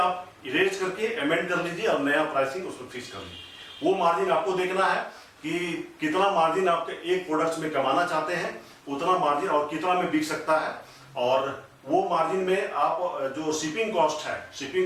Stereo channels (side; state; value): both; identical; correlation 1.00